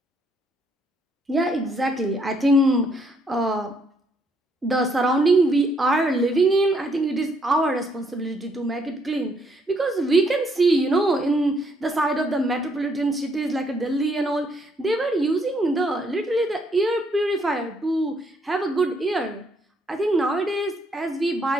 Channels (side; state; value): both; normal; correlation 0.71